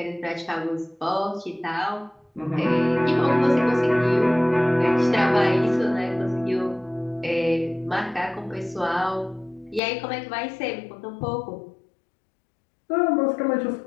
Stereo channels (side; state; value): right; drops out; at 9.8 s